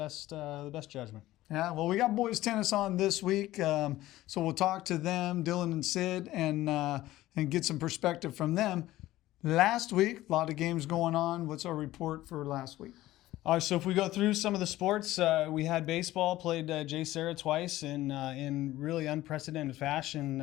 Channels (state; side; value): quieter; right; 15.9 dB